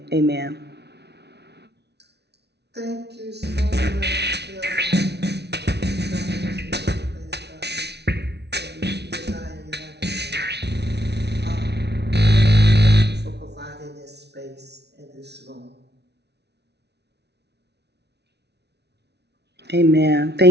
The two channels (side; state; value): left; late; 0.49 ms